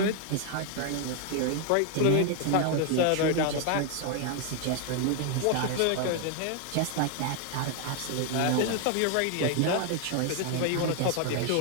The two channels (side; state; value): both; different; correlation 0.00